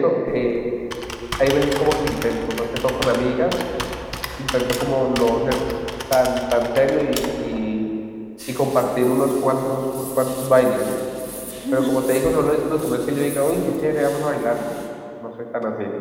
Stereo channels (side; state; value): both; identical; correlation 1.00